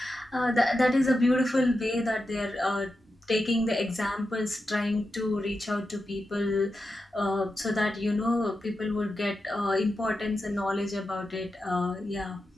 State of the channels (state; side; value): normal; both; correlation 0.89